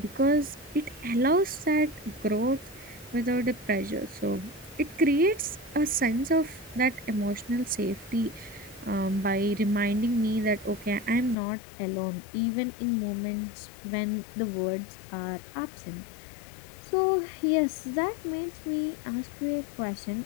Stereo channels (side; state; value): right; drops out; at 11.4 s